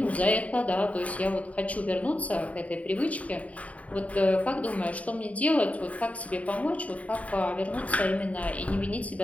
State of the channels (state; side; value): late; right; 0.068 ms